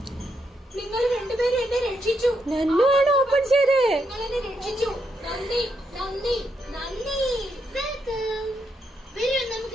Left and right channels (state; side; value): normal; both; correlation 0.80